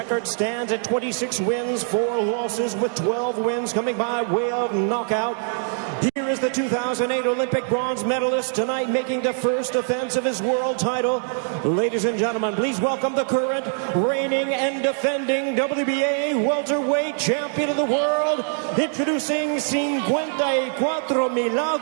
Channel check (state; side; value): silent; left; 63 dB below the other